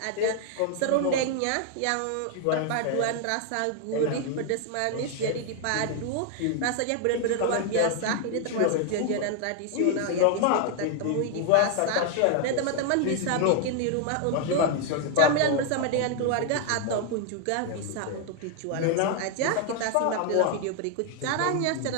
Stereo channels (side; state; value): both; different; correlation 0.00